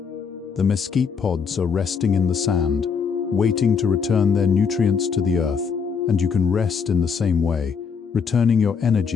The mesquite pods are resting in the sand, waiting to return their nutrients to the earth, and you can rest in the same way, returning your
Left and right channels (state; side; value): quieter; right; 6.1 dB